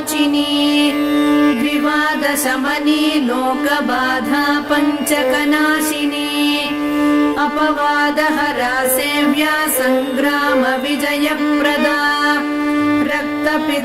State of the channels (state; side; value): identical; both; correlation 1.00